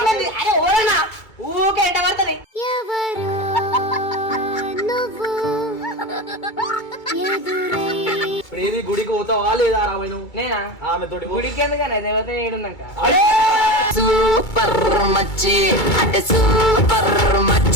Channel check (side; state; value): right; late; 2.3 ms